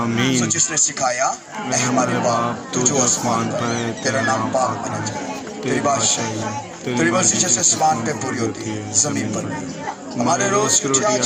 सो जिसने सिखाया ऐ हमारे बाप तू जो आसमान पर है, तेरा नाम पाक होना चाहिए, तेरी बादशाही तेरी मर्जी जैसे आसमान पे पूरी होती है जमीन पर भी। हमारे रोज की रोटी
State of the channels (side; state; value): both; identical; correlation 1.00